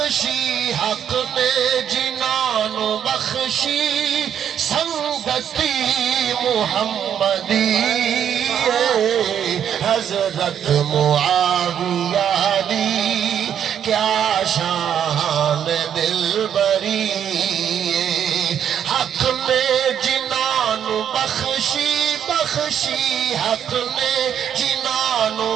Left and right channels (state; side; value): quieter; left; 9.0 dB